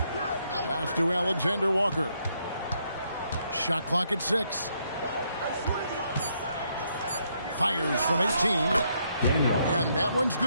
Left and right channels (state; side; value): inverted; both; correlation -0.74